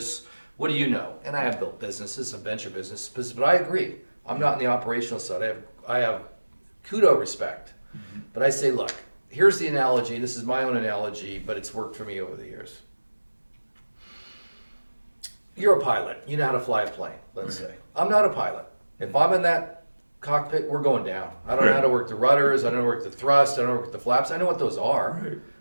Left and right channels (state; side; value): inverted; both; correlation -1.00